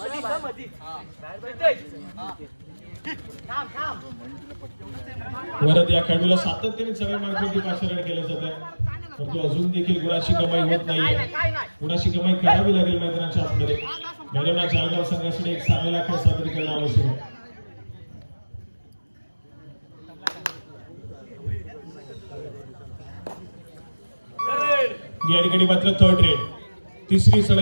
वरद या खेळाडूला सातत्याने सगळ्या मार्गावरती पाचारण केलं जात आहे परंतु अजून देखील गुणाची कमाई होत नाहीये. गुणाची कमाई करावी लागेल मैदानाच्या आतमध्ये. भैरवनाथ जालगाव संघासाठी एक चांगला खेळ सादर करणं आवश्यक आहे. या ठिकाणी मात्र 3rd रेड 3री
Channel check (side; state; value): both; inverted; correlation -1.00